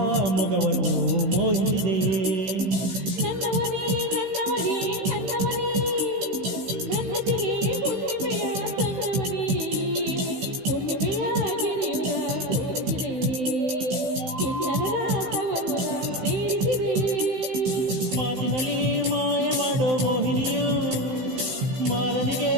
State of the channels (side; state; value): left; late; 16 ms